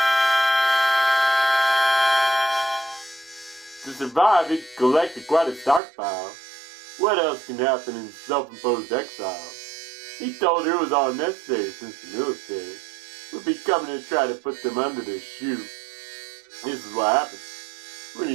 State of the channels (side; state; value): left; drops out; at 5.8 s